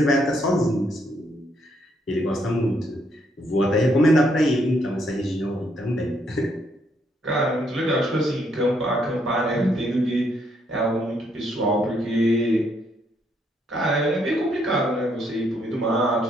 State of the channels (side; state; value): both; normal; correlation 0.73